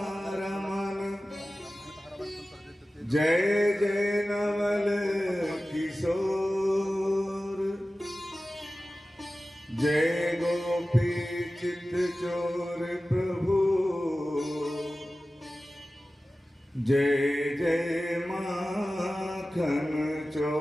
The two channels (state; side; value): normal; both; correlation 0.96